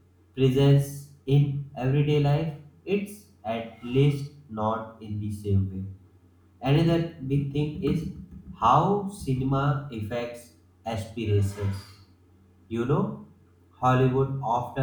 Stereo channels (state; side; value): identical; both; correlation 1.00